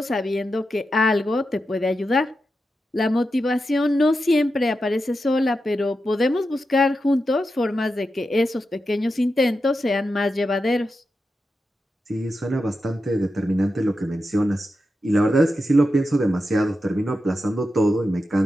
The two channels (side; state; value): both; normal; correlation 0.89